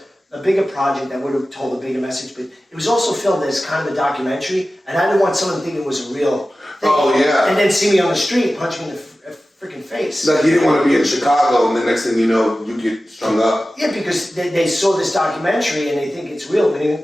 a bigger project, I would have told a bigger message. But it was also filmed as kind of a documentary, and I didn't want someone to think it was a real thing. Oh, yeah. And then see me on the street, punch me in the freaking face. Like, you didn't want to be in Chicago, and the next thing you know, you get strung up. Yeah, because they saw this documentary and they think it's real.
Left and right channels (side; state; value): both; normal; correlation 0.95